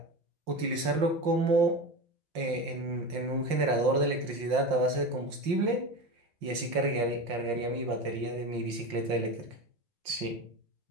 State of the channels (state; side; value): late; left; 5.7 ms